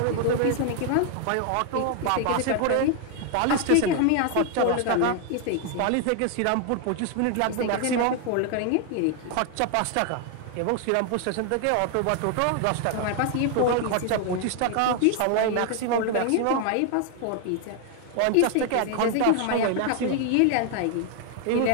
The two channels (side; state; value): both; different; correlation 0.00